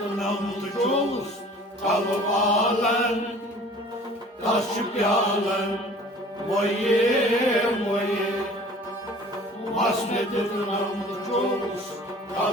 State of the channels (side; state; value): both; normal; correlation 0.47